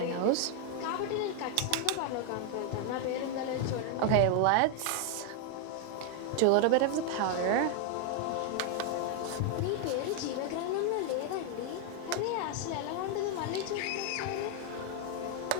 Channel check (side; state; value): both; different; correlation 0.00